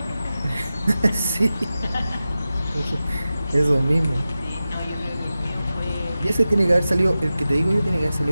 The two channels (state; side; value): inverted; both; correlation -0.94